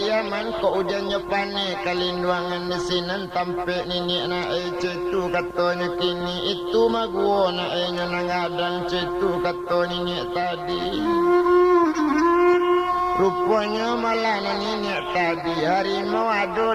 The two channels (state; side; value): identical; both; correlation 1.00